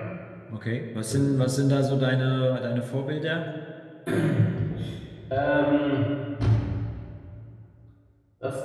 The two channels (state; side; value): identical; both; correlation 1.00